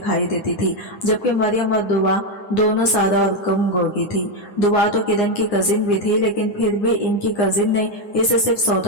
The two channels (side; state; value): right; late; 9.7 ms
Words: देती थी। जबकि मरियम और दुआ दोनों सादा और कम गोगी थी। दुआ तो किरण की कजिन भी थी, लेकिन फिर भी इनकी कजिन ने इसे सिर्फ